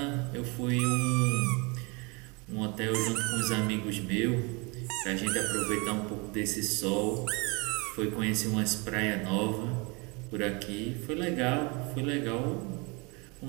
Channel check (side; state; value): left; quieter; 29.4 dB